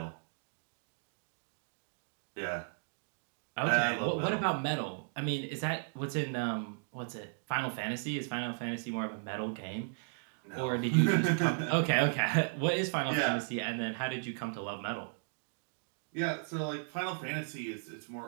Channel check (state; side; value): silent; left; digital silence